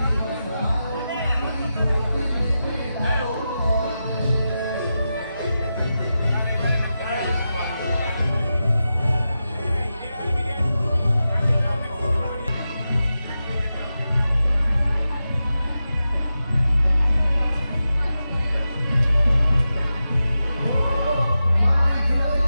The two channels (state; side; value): inverted; both; correlation -0.91